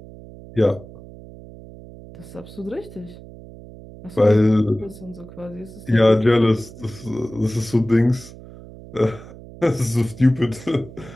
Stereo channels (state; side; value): noise; right; hum, 17 dB below the sound